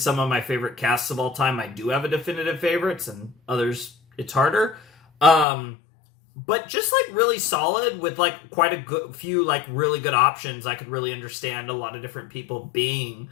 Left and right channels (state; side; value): drops out; right; at 5.5 s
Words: of my favorite casts of all time, I do have a definitive favorites, and others, it's harder. But just, like, really solid with, like, quite a few, like, really good options. I could really understand a lot of different people being